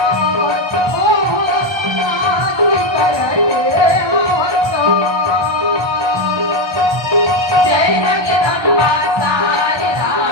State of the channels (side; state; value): left; late; 1.3 ms